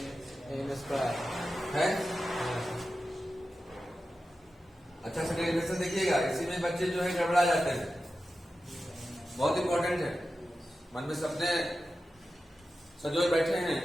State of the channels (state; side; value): normal; both; correlation 0.92